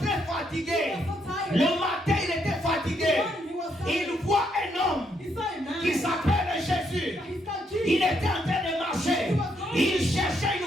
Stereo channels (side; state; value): both; normal; correlation 0.75